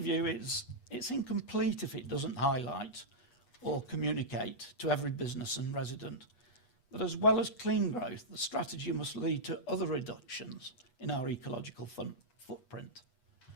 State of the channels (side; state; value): right; late; 8.2 ms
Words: is it's incomplete if it doesn't highlight or communicate to every business and resident that as well as clean growth, the strategy must lead to other reductions in our ecological footprint.